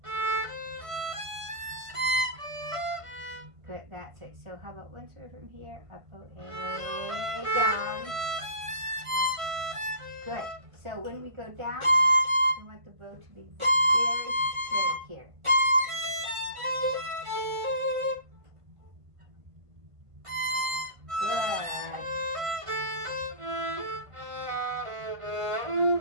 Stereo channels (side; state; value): left; late; 1.5 ms